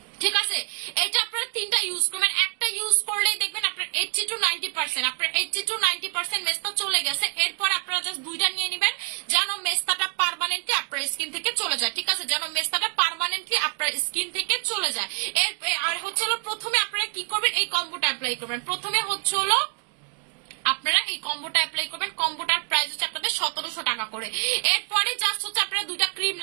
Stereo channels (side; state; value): left; quieter; 34.2 dB